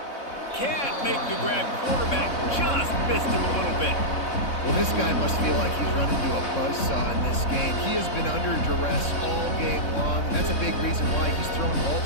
Can't make the grab. Quarterback just missed him a little bit. Well, this guy must feel like he's run into a buzzsaw in this game. He has been under duress all game long, and that's a big reason why he's thrown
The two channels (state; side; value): late; right; 3.6 ms